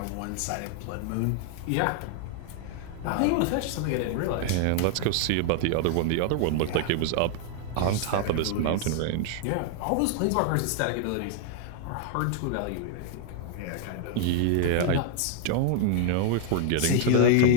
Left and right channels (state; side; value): different; both; correlation 0.00